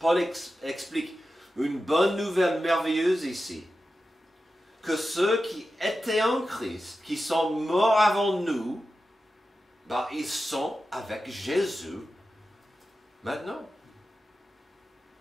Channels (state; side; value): normal; both; correlation 0.92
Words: explique une bonne nouvelle merveilleuse ici. Que ceux qui étaient en Christ, qui sont morts avant nous, ils sont avec Jésus maintenant.